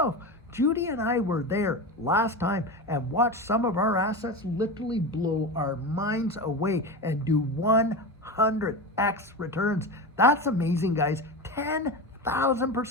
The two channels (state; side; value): normal; both; correlation 0.24